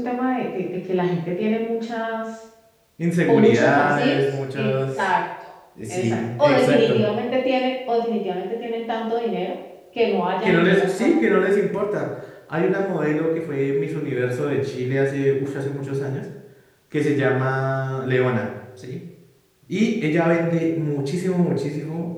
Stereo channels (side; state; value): both; identical; correlation 1.00